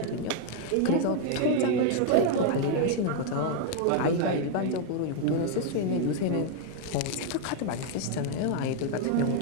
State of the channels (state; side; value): different; both; correlation 0.00